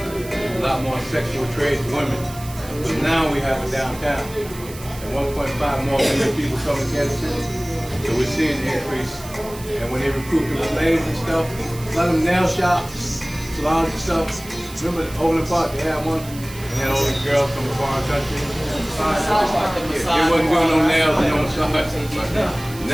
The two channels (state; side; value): noise; right; hiss, 16 dB below the sound